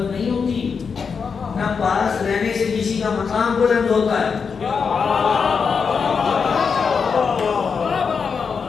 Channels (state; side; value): quieter; right; 5.8 dB